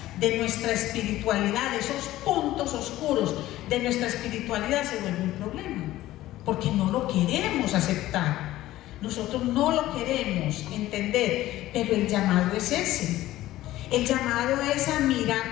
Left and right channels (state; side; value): quieter; right; 15.5 dB